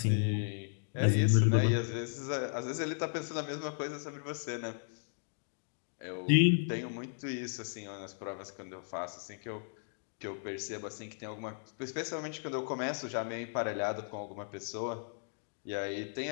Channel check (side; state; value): right; silent; digital silence